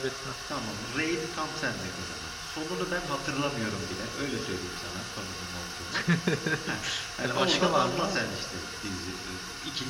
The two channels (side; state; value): both; identical; correlation 1.00